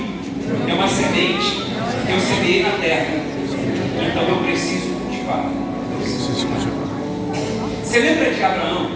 é uma semente que eu semeei na terra, então eu preciso cultivar. Você lembra de Abraão?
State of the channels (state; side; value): identical; both; correlation 1.00